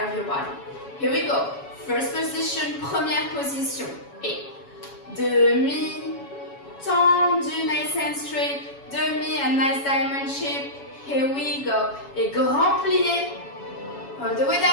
your body. Here we go. First position, première position. Et demi tendu, nice and straight. Demi, a nice diamond shape. Here we go. Et grand plié, all the way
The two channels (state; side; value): late; right; 7.2 ms